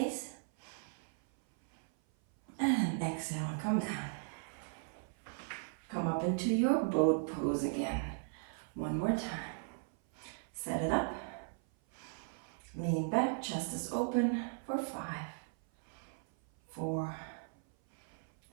And exhale, come down. Come up into your boat pose again. One more time. Set it up. Lean back, chest is open for 5, 4,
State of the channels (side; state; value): left; silent; 53 dB below the other